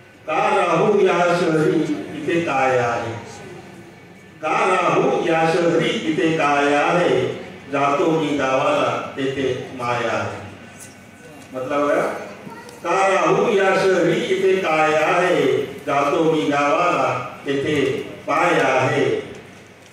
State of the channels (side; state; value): both; identical; correlation 1.00